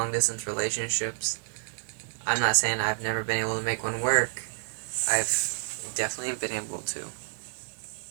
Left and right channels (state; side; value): silent; left; digital silence